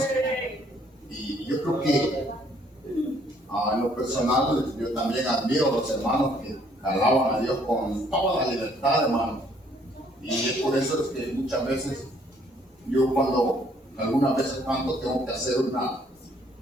Y yo creo que en lo personal yo también admiro a los hermanos que alaban a Dios con toda la libertad, hermano. Y es por eso es que muchas veces yo cuando algunas veces canto tengo que hacer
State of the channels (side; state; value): both; normal; correlation 0.64